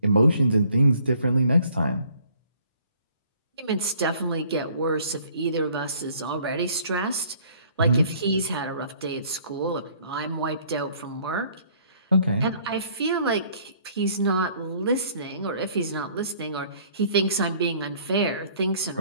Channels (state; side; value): inverted; both; correlation -0.58